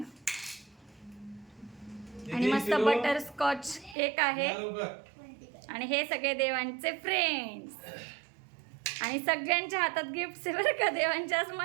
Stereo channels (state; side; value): drops out; left; at 4.0 s